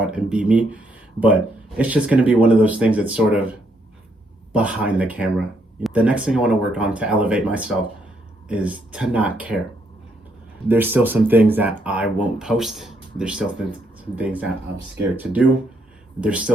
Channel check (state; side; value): normal; both; correlation 0.74